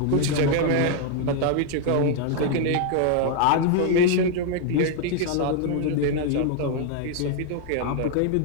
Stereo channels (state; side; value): different; both; correlation 0.00